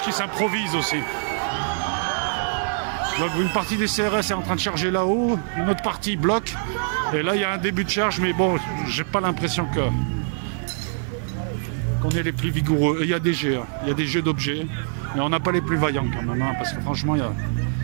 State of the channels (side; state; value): left; silent; 58 dB below the other